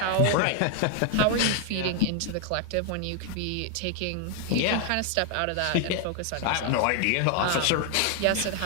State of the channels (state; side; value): different; both; correlation 0.00